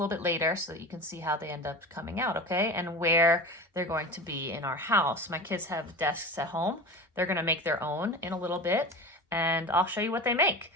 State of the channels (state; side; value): normal; both; correlation 0.30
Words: bit later so that you can see how they end up coming out, okay? And where they're going to be in our house. My kids have desks at home. They're going to make their own in a little bit, and I'll show you what they make.